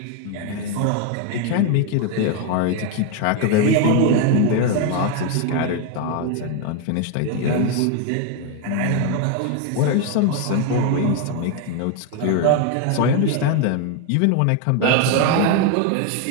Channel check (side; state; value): both; different; correlation 0.01